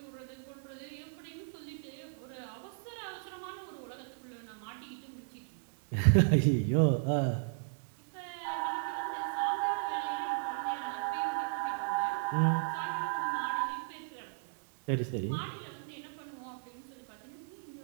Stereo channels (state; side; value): silent; left; digital silence